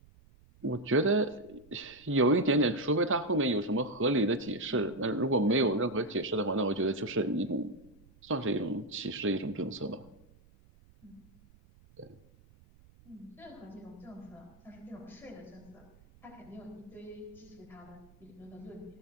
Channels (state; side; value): noise; right; rumble, 27 dB below the sound